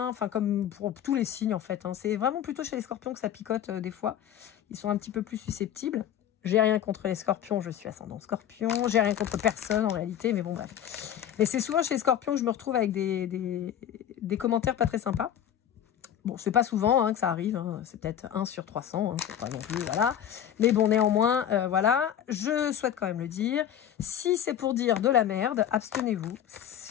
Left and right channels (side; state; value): right; quieter; 10.2 dB